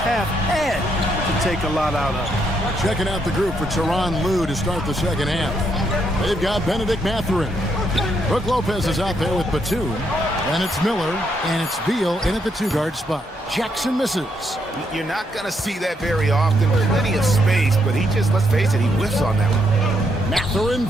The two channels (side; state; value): both; normal; correlation 0.76